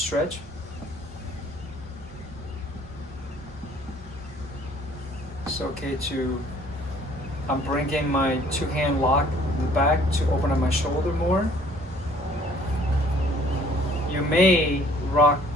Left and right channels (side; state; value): both; normal; correlation 0.57